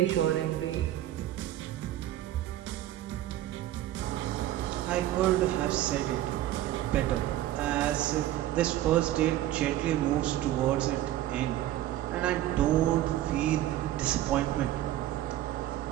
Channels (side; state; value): left; quieter; 13.6 dB